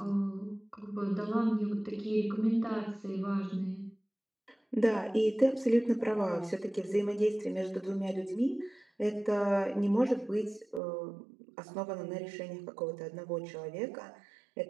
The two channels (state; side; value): drops out; left; at 10.8 s